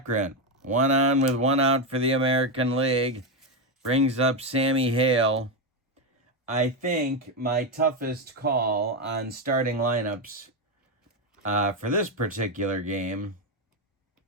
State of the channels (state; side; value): normal; both; correlation 0.08